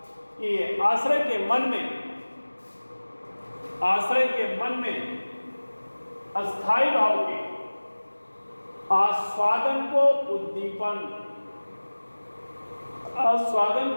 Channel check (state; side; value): inverted; both; correlation -1.00